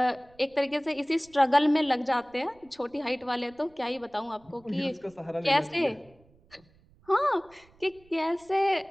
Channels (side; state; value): right; noise; rumble, 30 dB below the sound